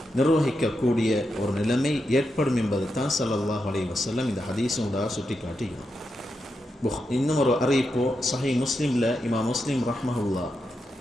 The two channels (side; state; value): both; normal; correlation 0.86